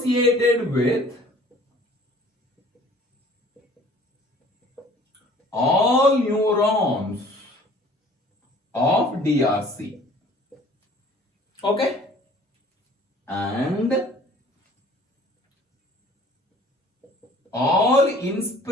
with all neurons of DRC. Okay? And all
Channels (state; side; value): normal; both; correlation 0.52